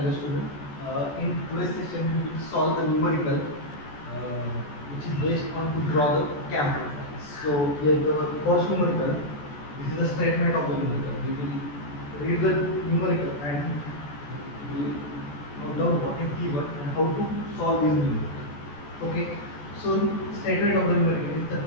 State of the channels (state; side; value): late; right; 14 ms